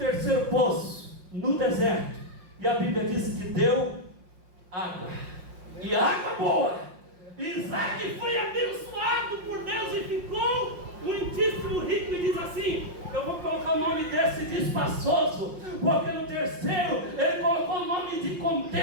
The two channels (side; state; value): left; late; 5.6 ms